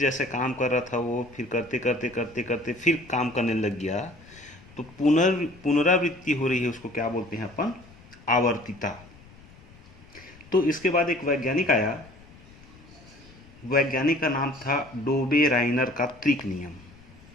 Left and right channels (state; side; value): noise; left; rumble, 23 dB below the sound